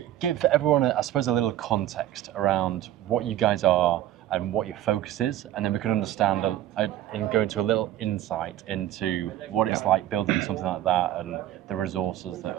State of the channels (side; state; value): left; quieter; 12.9 dB